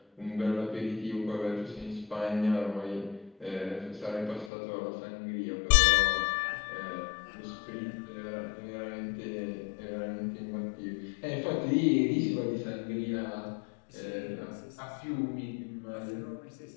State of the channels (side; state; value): right; drops out; at 4.5 s